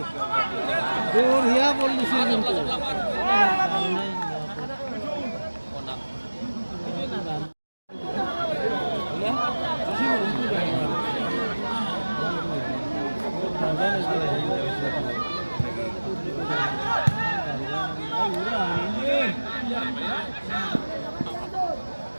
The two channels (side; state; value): both; inverted; correlation -1.00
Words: বড়িয়া বলছিল কিন্তু